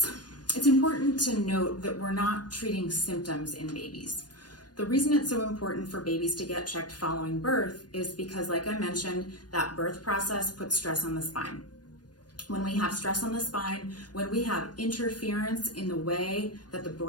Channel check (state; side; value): late; right; 0.69 ms